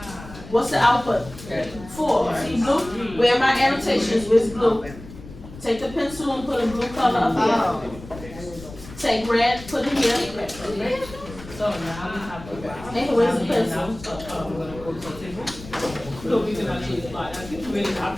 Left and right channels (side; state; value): left; noise; rumble, 16 dB below the sound